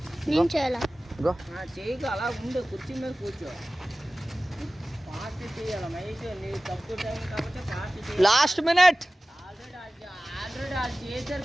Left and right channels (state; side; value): normal; both; correlation 0.97